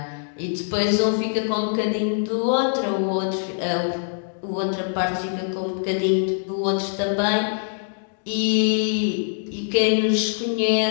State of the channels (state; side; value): silent; right; digital silence